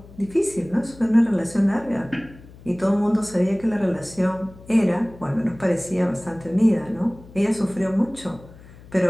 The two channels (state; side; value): noise; left; hum, 21 dB below the sound